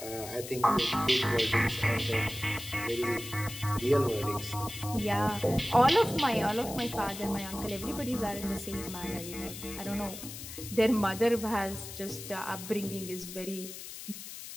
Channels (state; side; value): noise; left; hiss, 11 dB below the sound